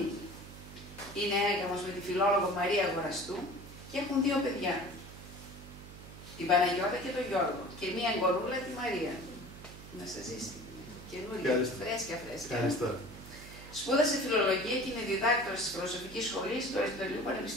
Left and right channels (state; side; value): noise; right; hum, 15 dB below the sound